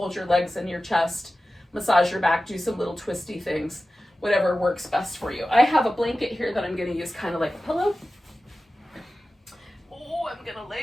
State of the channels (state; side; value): normal; both; correlation 0.95